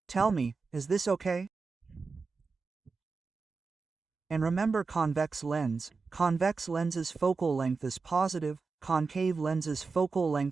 Tell me, is this okay? And remember convex lens. Convex lens's focal length is positive, concave lens's focal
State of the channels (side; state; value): left; quieter; 4.5 dB